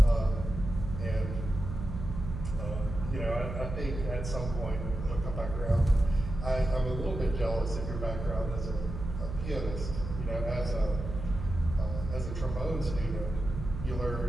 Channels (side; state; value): right; noise; hum, 7 dB below the sound